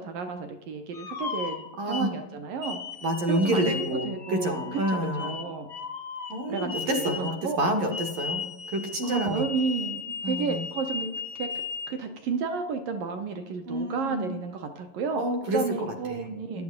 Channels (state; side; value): late; left; 11 ms